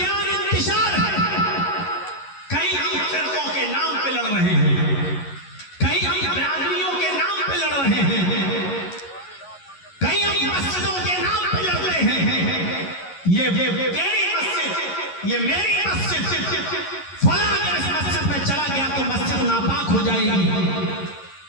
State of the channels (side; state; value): right; late; 11 ms